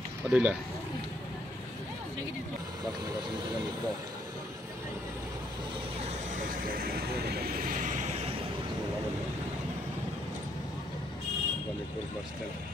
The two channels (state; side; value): normal; both; correlation 0.70